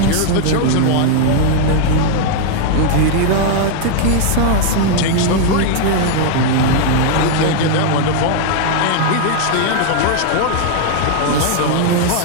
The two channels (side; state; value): both; different; correlation 0.00